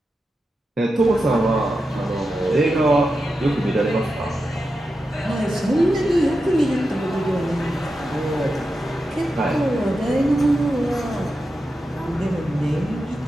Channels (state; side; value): normal; both; correlation 0.89